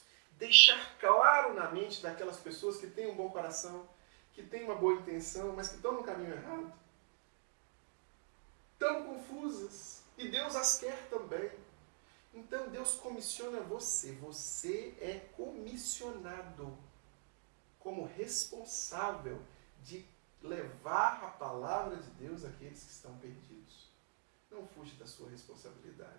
Deixar claro na mente daquelas pessoas que têm um bom coração, que têm uma boa intenção, mas que estão no caminho errado. Tão confusas. E Deus as quer também. Então Deus comissiona você. Você é comissionado como responsável de levar a palavra de Deus àqueles que estão perdidos. Não fuja da sua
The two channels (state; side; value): silent; left; 51 dB below the other